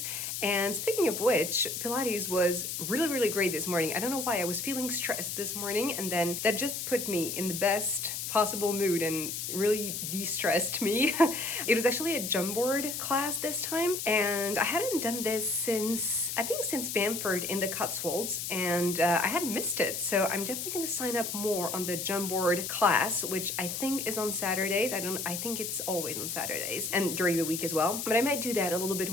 And speaking of which, Pilates was really great this morning. I don't know why, I was feeling stressed this morning, and then that just put me in the best possible mood and really de-stressed me. It was actually a jump board class this time, and I hadn't done this since Bamford in the Cotswolds, and I had missed it. So I'm definitely gonna sign up more on the jump board class, which I think is on Saturdays. I think it's always on Saturdays and during the week as well. But I might do that a little bit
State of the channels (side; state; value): left; noise; hiss, 4 dB below the sound